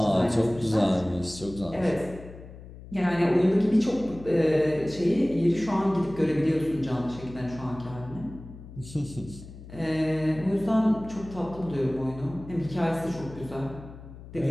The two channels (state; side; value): noise; left; hum, 16 dB below the sound